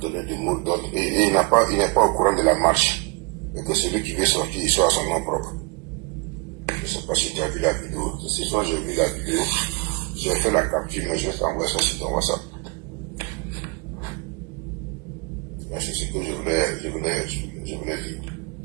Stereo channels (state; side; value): quieter; left; 27.6 dB